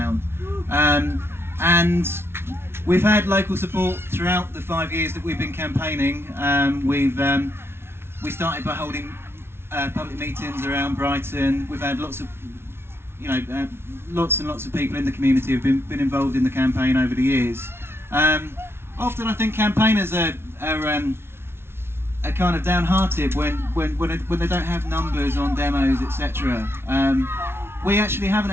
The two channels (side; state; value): left; late; 0.12 ms